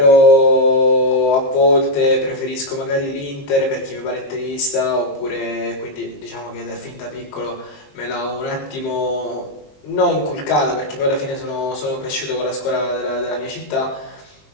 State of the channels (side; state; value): right; late; 20 ms